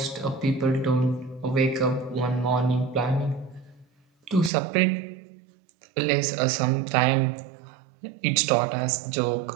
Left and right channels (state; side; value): drops out; left; at 4.5 s